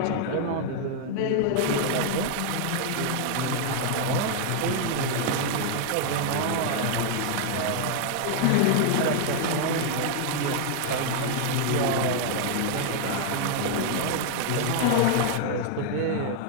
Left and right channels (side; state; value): both; different; correlation 0.00